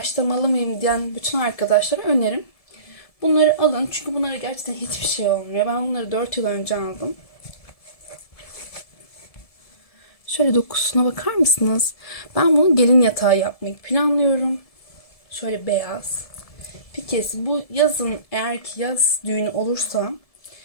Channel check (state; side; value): late; right; 1.7 ms